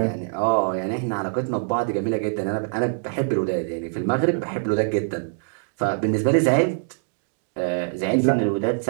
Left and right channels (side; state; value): left; silent; 63 dB below the other